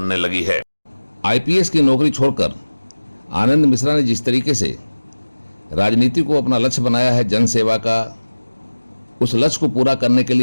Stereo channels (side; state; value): both; inverted; correlation -1.00